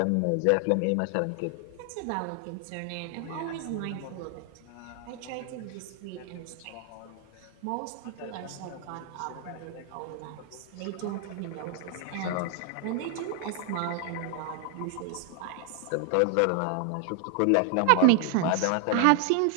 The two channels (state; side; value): different; both; correlation 0.00